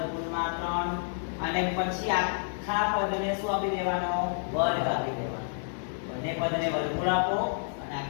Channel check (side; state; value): right; silent; 58 dB below the other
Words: 3 અને પછી આખા પદને શું આપી દેવાનો વર્ગ આપી દેવાનો. બંને પદને વર્ગમૂળ આપો અને